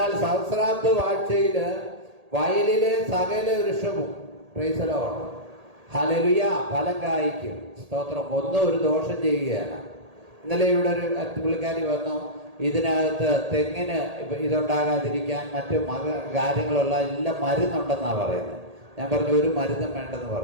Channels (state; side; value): late; left; 1.8 ms